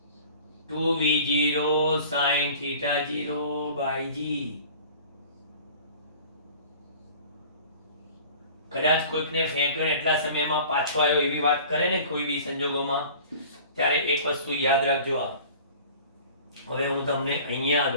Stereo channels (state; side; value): inverted; both; correlation -0.45